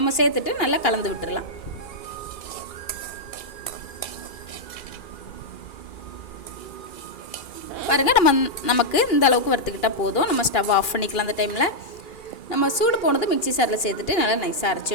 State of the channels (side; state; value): right; late; 2.4 ms